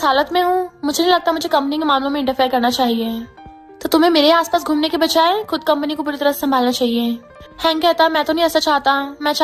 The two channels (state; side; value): identical; both; correlation 1.00